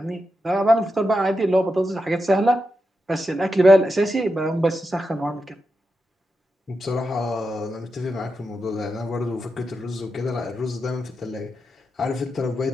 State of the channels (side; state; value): both; normal; correlation 0.88